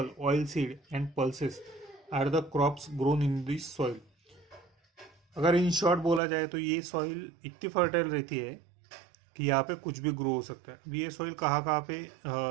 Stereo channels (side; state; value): left; drops out; at 6.2 s